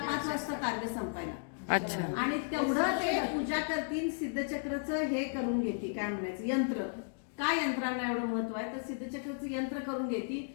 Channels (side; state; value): right; silent; digital silence